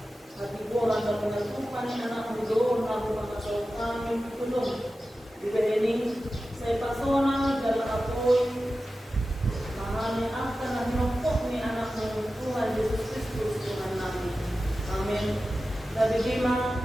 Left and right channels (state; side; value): normal; both; correlation 0.94